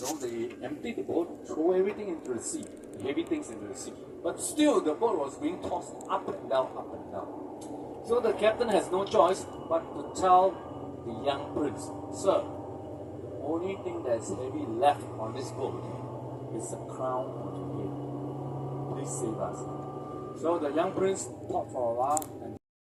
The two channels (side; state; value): both; identical; correlation 1.00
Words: they emptied the boat, throw everything into the sea, the heavy things into the sea. But still, the boat was being tossed up and down, up and down. So the captain has no choice but to tell the young prince, sir, the only thing that's heavy left on this boat is the crown of the head. Please save us. So the young prince thought for a while